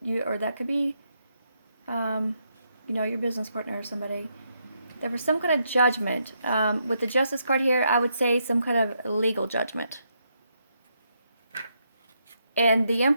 or that could be, you know, your business partner or somebody. There was some kind of judgment. With the Justice card here, I would say some kind of legal judgment. And the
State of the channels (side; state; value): both; inverted; correlation -0.78